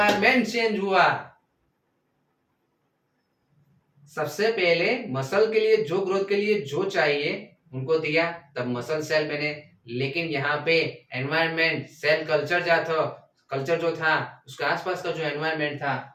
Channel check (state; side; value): identical; both; correlation 1.00